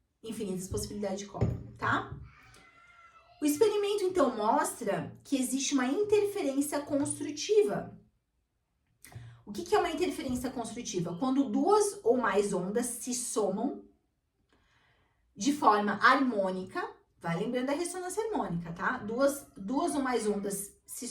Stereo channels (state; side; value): identical; both; correlation 1.00